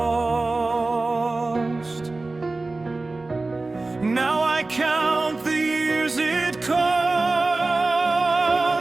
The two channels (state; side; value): quieter; left; 3.3 dB